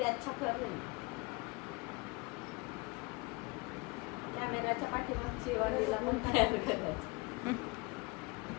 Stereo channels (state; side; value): quieter; right; 25.8 dB